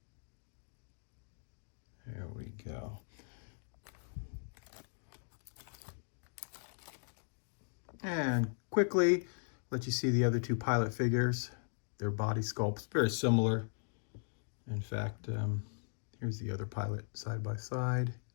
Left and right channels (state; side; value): silent; right; digital silence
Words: there we go. And quickly let you see the other two pilot figures. Their body sculpts very similar. In fact, here's the other pilot side by side.